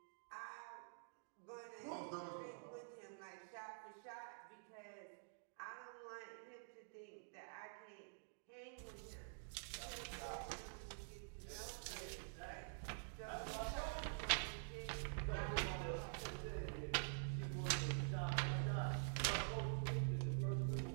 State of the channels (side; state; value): left; silent; digital silence